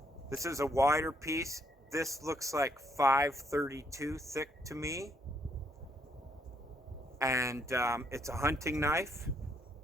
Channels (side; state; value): both; normal; correlation 0.71